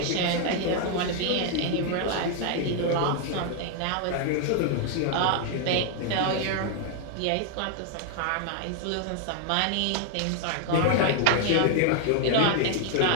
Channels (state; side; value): different; both; correlation 0.00